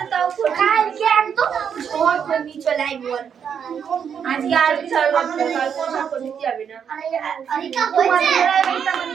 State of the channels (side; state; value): left; quieter; 7.6 dB